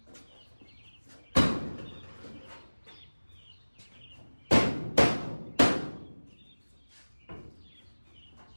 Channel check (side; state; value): both; inverted; correlation -1.00